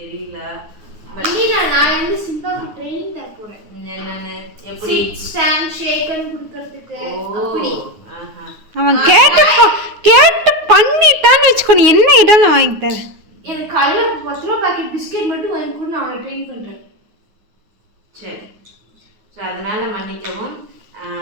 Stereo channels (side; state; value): left; late; 9.5 ms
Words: நான் வந்து சிம்பாவுக்கு ட்ரெயினிங் தர போறேன். என்னன்னு எப்படி ஸ்டாண்ட் ஷேக்கன் கொடுக்கிறதுக்கு அப்படி. அவன் கேட்டு பண்ணிட்டான்னு வச்சுக்கோ, நீ என்ன ஐட்டம் நான் வாங்கி தரேன். எனக்கு காலையில் 10 ரூபா பாக்கெட் பிஸ்கெட் மட்டும் வாங்கி கூட நான் அவனை ட்ரெயின் பண்ணுறேன். சரி, ஸோ அதனால் மன்னிக்கவும்.